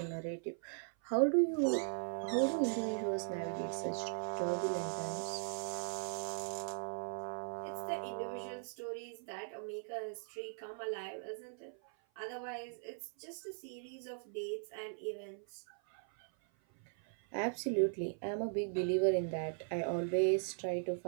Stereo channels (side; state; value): left; silent; 52 dB below the other